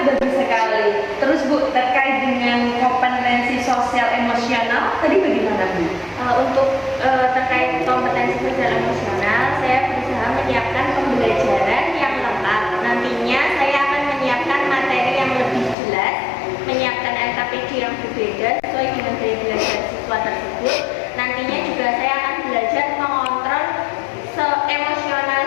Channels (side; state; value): right; drops out; at 15.8 s